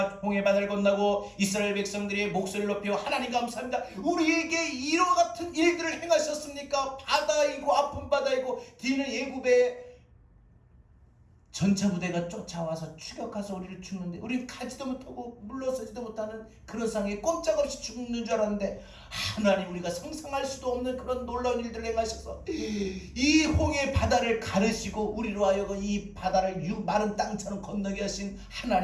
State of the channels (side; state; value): both; identical; correlation 1.00